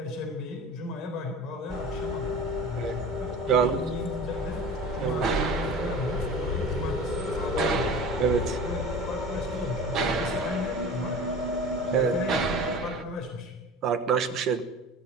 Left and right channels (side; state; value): both; normal; correlation 0.37